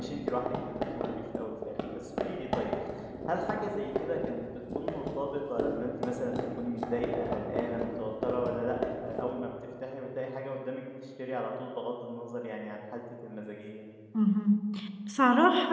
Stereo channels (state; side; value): identical; both; correlation 1.00